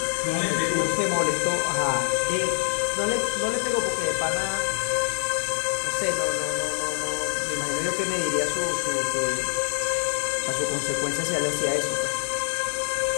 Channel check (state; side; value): silent; right; digital silence